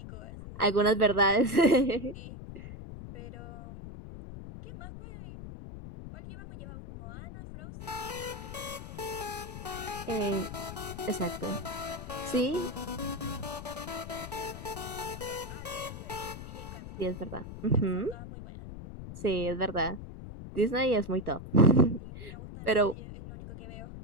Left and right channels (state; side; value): noise; left; rumble, 11 dB below the sound